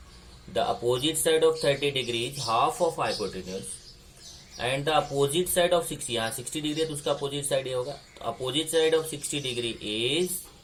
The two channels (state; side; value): identical; both; correlation 1.00